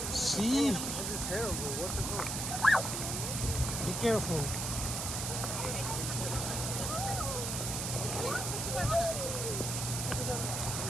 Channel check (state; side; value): noise; right; hiss, 2 dB below the sound